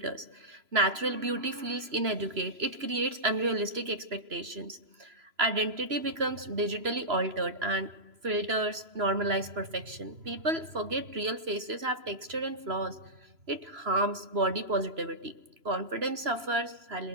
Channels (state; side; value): late; left; 3.0 ms